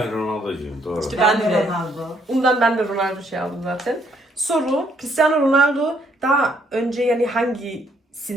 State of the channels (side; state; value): both; normal; correlation 0.69